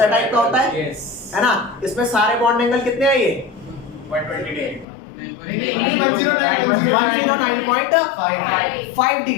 टाइप का होता है, है ना? इसमें सारे बॉन्ड एंगल कितने हैं? ये 109.5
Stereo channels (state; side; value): drops out; right; at 4.9 s